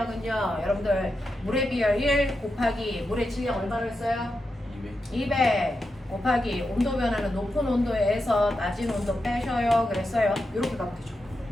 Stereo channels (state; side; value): normal; both; correlation 0.88